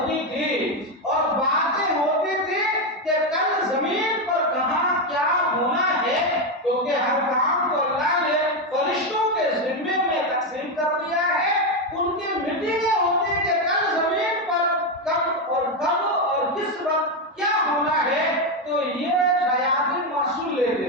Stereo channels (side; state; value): both; normal; correlation 0.08